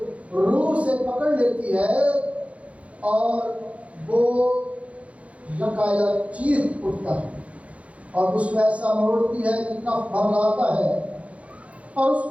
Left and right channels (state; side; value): late; left; 0.064 ms